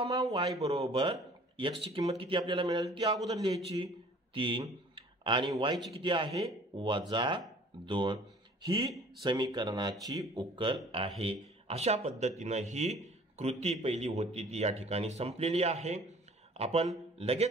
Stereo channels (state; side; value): normal; both; correlation 0.51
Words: y बरोबर x ची किंमत किती आपल्याला मिळाली ती अगोदर लिहायची 3 आणि y ची किती आहे वजा 2. ही समीकरणाची उकल आहे. अशा पद्धतीनं ही कृती पहिली होती ती या ठिकाणी संपलेली आहे. आपण